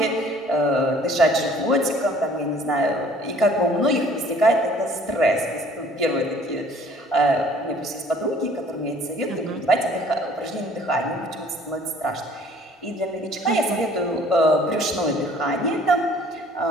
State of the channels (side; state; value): both; normal; correlation 0.55